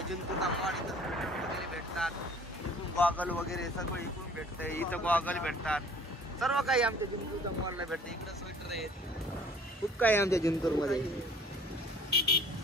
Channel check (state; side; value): normal; both; correlation 0.51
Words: मॉल. इथं वगैरे भेटतात. इथून गॉगल वगैरे सगळं इकडून भेटतंय. इथं गॉगल भेटतात. सर्व काही आमच्या जिंतूरच्या मॉलला भेटतं. इकडं स्वेटर आहेत. खूप काही आमच्या जिंतूरमध्ये.